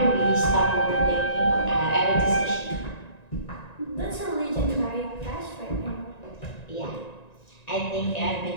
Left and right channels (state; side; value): late; right; 1.9 ms